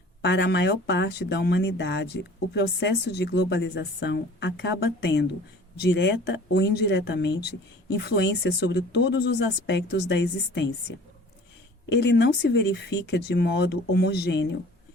Para a maior parte da humanidade, o processo de globalização acaba tendo, direta ou indiretamente, influência sobre todos os aspectos da existência. ele não se verifica de modo homogêneo,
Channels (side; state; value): both; normal; correlation 0.47